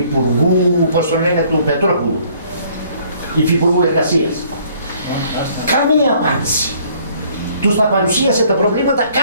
πώς το λένε, του Πετρόπουλου, Υφυπουργού Εργασίας. Καμία απάντηση. Τους τα παρουσίασε τα προβλήματα,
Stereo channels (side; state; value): both; inverted; correlation -0.60